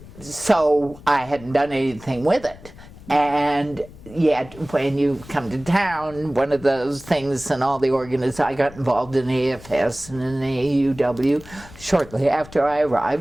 so I hadn't done anything with it. And yet, when you come to town, one of those things, and all the I got involved in AFS and in AUW shortly after I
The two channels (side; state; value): left; noise; rumble, 19 dB below the sound